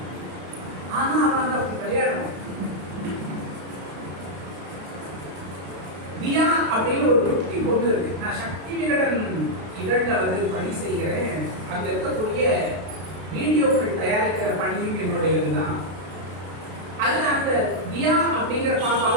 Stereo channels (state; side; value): late; left; 32 ms